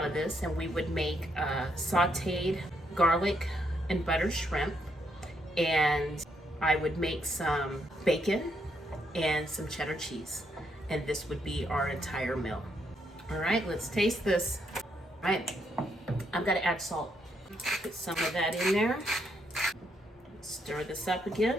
of this, and we would make sautéed garlic and butter shrimp, and I would make some bacon and some cheddar cheese, and this would be our entire meal. All right, let's taste this. All right, I'm gonna add salt. Put some of that in there. Stir this up again.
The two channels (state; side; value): normal; both; correlation 0.76